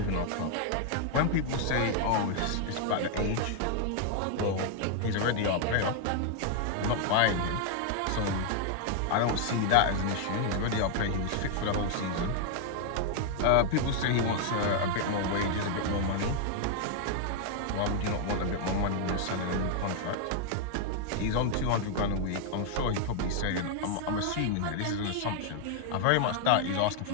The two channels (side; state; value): both; different; correlation 0.00